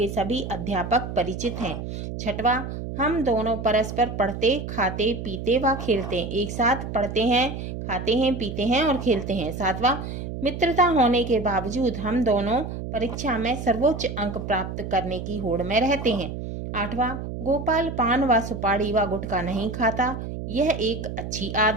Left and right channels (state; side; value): noise; right; hum, 7 dB below the sound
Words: सभी अध्यापक परिचित हैं। छठवां, हम दोनों परस्पर पढ़ते, खाते, पीते व खेलते, एक साथ पढ़ते हैं, खाते हैं, पीते हैं और खेलते हैं। सातवां, मित्रता होने के बावजूद हम दोनों परीक्षा में सर्वोच्च अंक प्राप्त करने की होड़ में रहते हैं। आठवां, गोपाल पान व सुपारी व गुटखा नहीं खाता, यह एक अच्छी